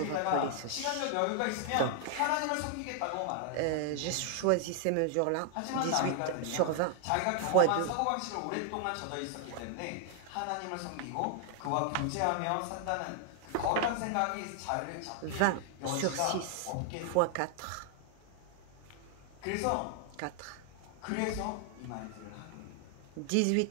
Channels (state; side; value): different; both; correlation 0.00